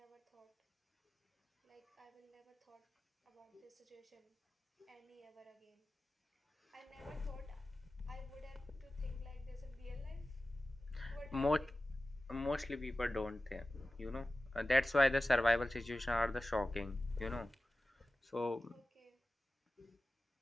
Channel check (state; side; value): normal; both; correlation 0.95